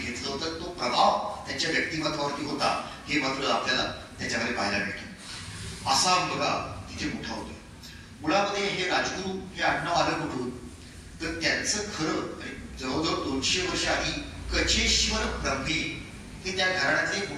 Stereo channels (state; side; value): identical; both; correlation 1.00